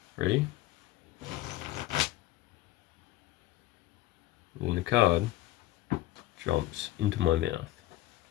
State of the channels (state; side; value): quieter; right; 16.1 dB